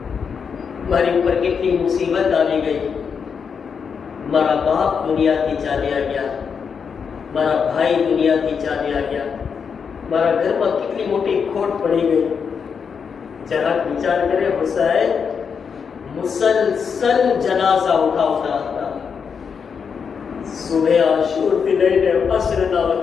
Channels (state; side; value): quieter; right; 6.3 dB